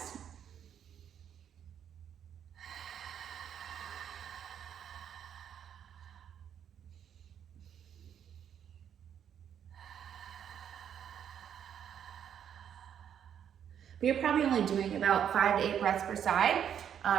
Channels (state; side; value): quieter; left; 8.9 dB